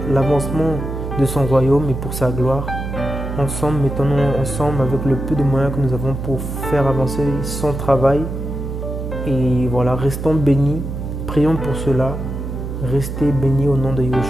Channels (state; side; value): noise; right; hum, 6 dB below the sound